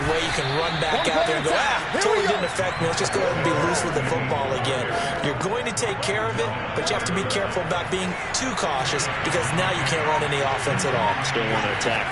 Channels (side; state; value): both; identical; correlation 1.00